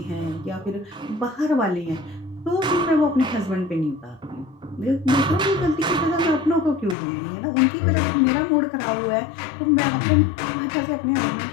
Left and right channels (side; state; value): right; drops out; at 7.0 s